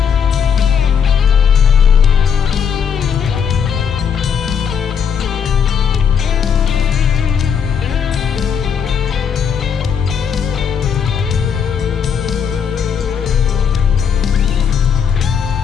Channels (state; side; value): quieter; right; 7.2 dB